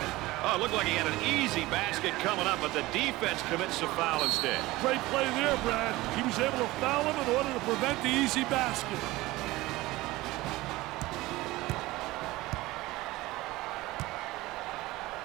Oh, it looked like he had an easy basket coming up, but the defense commits a foul instead. Great play there, Brad. He was able to foul him in order to prevent the easy basket.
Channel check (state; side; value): quieter; left; 19.1 dB